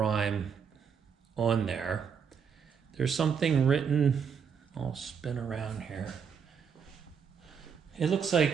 on there. There's something written, I'll spin around here. It looks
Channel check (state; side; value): quieter; left; 6.8 dB